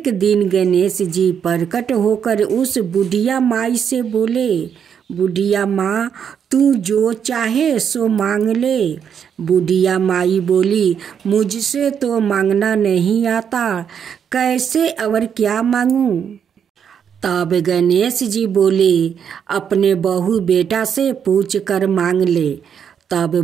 दिन गणेश जी प्रकट होकर उस बुढ़िया माई से बोले, बुढ़िया माँ, तू जो चाहे सो मांग ले। बुढ़िया माई बोली, मुझसे तो मांगना नहीं आता, कैसे और क्या मांगूं? तब गणेश जी बोले, अपने बहू बेटा से पूछ कर मांग ले। तब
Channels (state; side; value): quieter; left; 7.9 dB